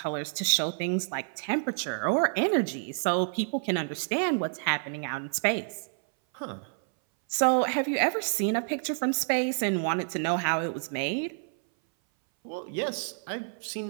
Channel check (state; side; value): silent; left; 59 dB below the other